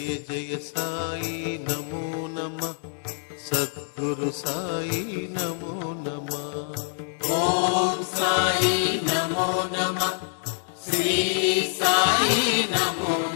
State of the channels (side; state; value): right; silent; digital silence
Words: జయ సాయి నమో నమ, సద్గురు సాయి నమో నమ. ఓం సాయి నమో నమ, శ్రీ సాయి నమో